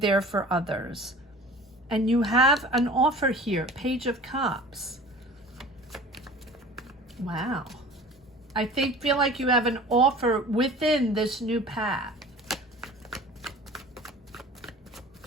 for others. And you have an offer here, Page of Cups. Wow. I feel like you have an offer within this new path.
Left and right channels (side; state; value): both; normal; correlation 0.42